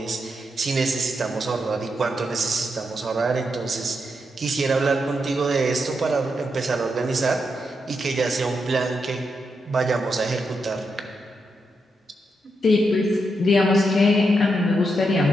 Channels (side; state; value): both; normal; correlation 0.83